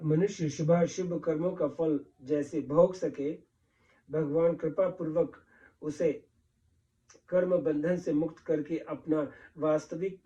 मनुष्य शुभाशुभ कर्मों का फल जैसे भोग सके, भगवान कृपा पूर्वक उसे कर्म बंधन से मुक्त करके अपना वास्तविक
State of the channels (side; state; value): both; identical; correlation 1.00